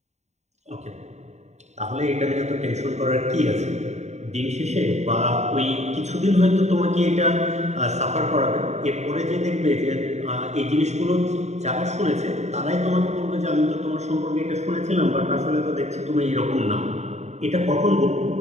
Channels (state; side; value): late; left; 0.32 ms